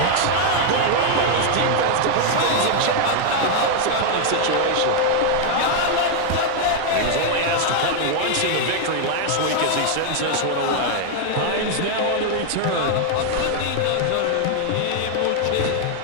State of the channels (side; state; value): both; different; correlation 0.00